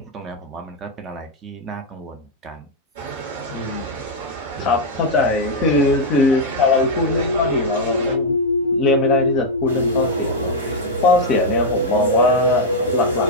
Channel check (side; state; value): both; normal; correlation -0.03